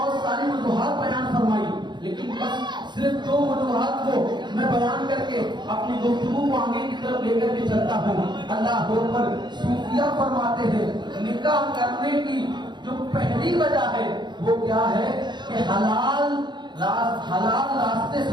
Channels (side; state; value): left; late; 0.21 ms